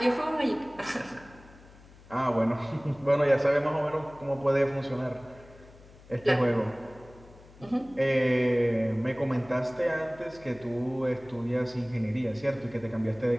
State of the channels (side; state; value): left; noise; hum, 23 dB below the sound